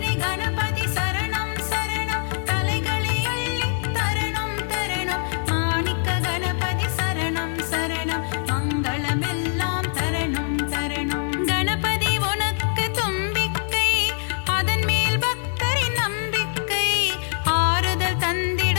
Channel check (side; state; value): right; silent; digital silence